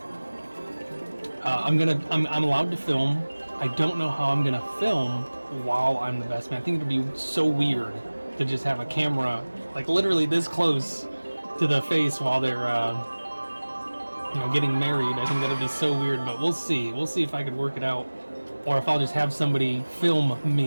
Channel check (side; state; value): both; inverted; correlation -1.00